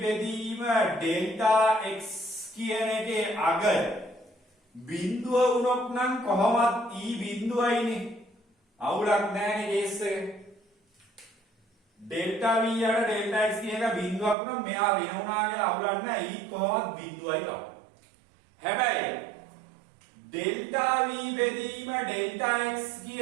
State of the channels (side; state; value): left; drops out; at 14.4 s